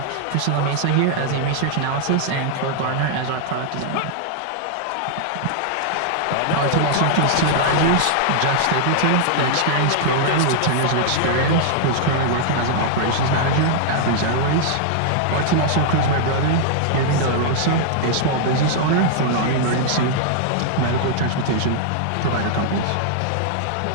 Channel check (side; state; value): both; different; correlation -0.01